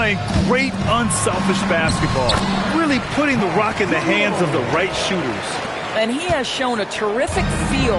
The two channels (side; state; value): both; identical; correlation 1.00